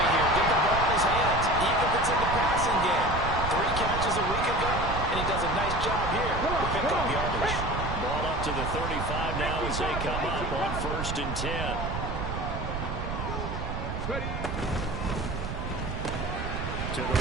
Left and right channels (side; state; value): right; noise; rumble, 4 dB below the sound